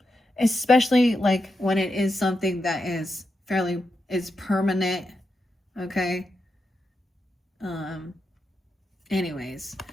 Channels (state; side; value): normal; both; correlation 0.86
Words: Especially like when it is something that is permanent. Okay. Anyways.